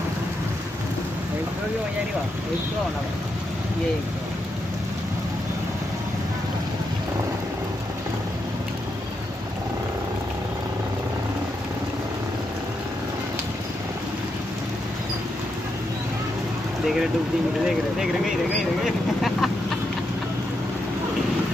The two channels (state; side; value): normal; both; correlation 0.83